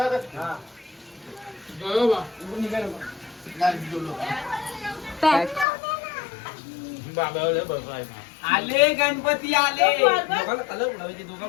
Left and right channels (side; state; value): right; drops out; at 5.7 s